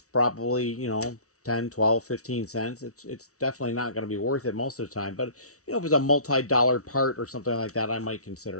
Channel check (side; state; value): right; late; 0.65 ms